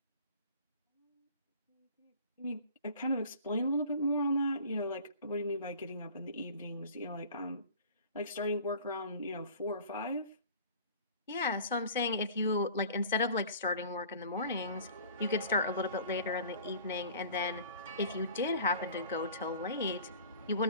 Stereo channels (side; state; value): both; inverted; correlation -0.44